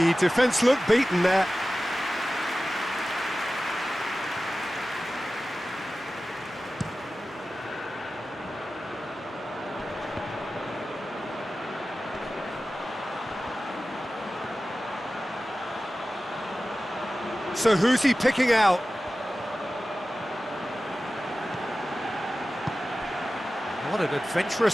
defence looked beaten there. So who's he picking out? What an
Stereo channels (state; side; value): normal; both; correlation 0.95